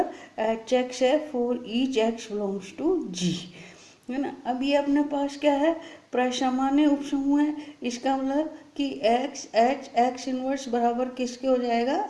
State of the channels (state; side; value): identical; both; correlation 1.00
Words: एच एक्स है for each X belongs to G, है ना। अब ये अपने पास क्या है, प्रसामान्य उपसमूह है, इसका मतलब कि एक्स एच एक्स इनवर्स बराबर किसके हो जाएगा,